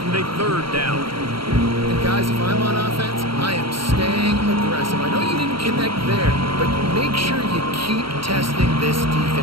in a 3rd down. And guys, if I'm on offense, I am staying aggressive. I know you didn't connect there, but make sure you keep testing this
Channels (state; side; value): late; left; 0.74 ms